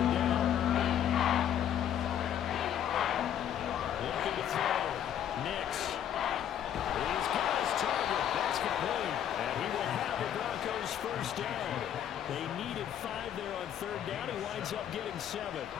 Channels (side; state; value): right; quieter; 10.0 dB